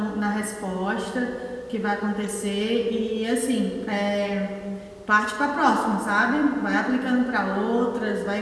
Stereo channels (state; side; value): identical; both; correlation 1.00